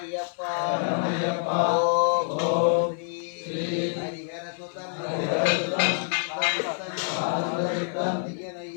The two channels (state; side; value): silent; right; 56 dB below the other